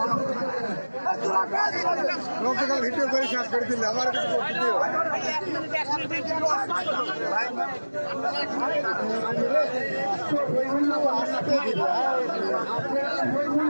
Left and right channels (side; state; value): both; inverted; correlation -1.00